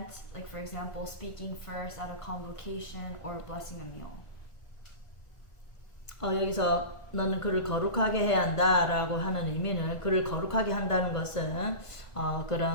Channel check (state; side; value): late; right; 1.5 ms